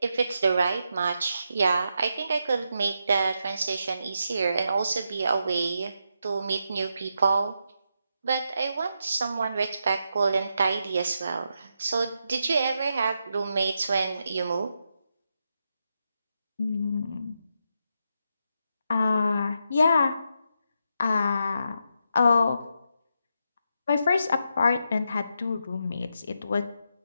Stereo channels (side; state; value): both; inverted; correlation -0.83